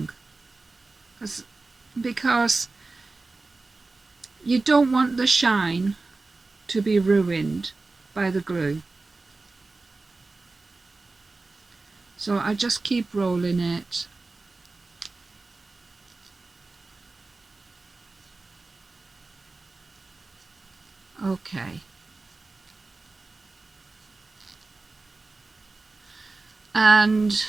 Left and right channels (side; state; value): left; quieter; 3.6 dB